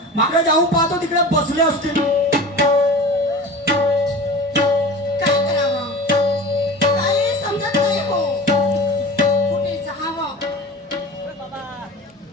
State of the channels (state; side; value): normal; both; correlation 0.35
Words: मागे जाऊन पाहतो तिकडे बसले असतील. काय करावं काही समजत नाही हो. कुठे जावं